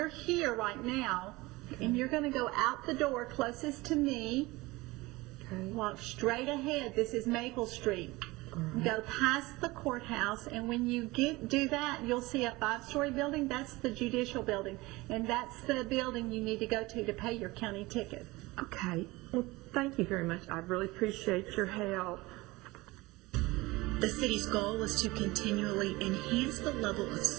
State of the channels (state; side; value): quieter; left; 21.4 dB